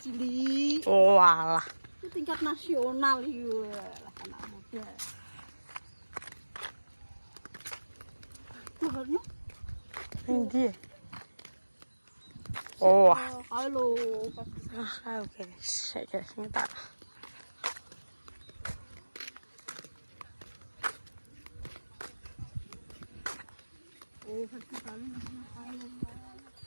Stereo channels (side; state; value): both; inverted; correlation -1.00